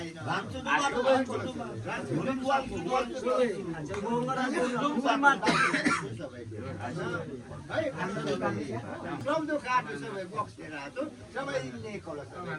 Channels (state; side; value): identical; both; correlation 1.00